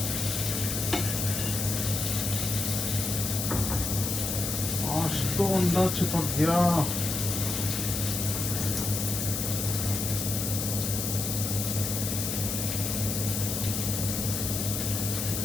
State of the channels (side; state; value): left; noise; hiss, 2 dB below the sound